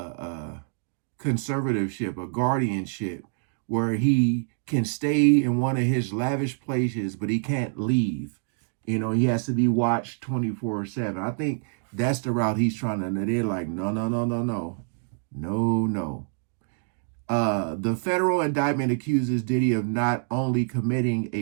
conservatorship, a guardianship, where he can stay in one of his lavish places, but he can't leave. You know, he has to be watched 24/7. I think that's the route he's trying to. They're like, no, no, no, no, no, no, no. The federal indictment accuses Diddy of not only committing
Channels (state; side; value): silent; left; digital silence